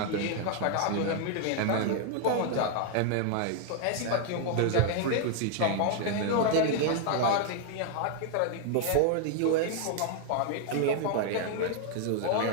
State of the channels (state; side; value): different; both; correlation 0.00